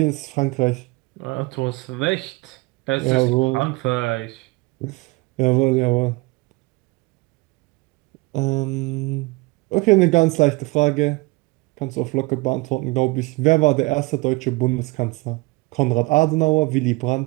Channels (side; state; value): left; quieter; 24.2 dB